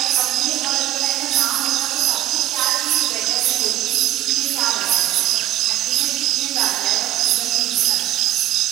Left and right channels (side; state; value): left; quieter; 14.1 dB